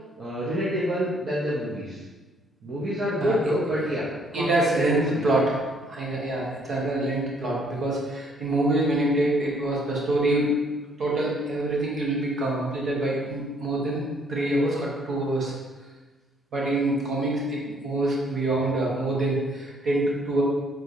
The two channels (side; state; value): both; normal; correlation 0.65